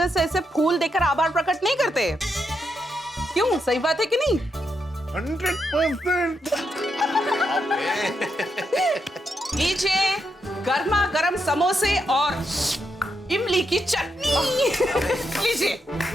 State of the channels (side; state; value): both; normal; correlation 0.82